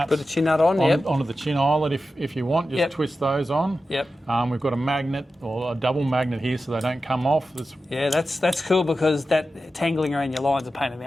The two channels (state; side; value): normal; both; correlation 0.92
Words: Put a chin nut on, onto the chin eyelet if you want. Just twist those on. We've got a magnet or a double magnet here so they don't come off. That's cool, because that tangling around your line's a pain in